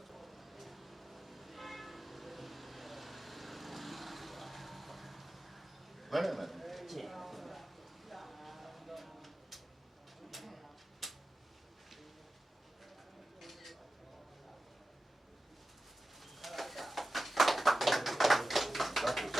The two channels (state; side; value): normal; both; correlation 0.93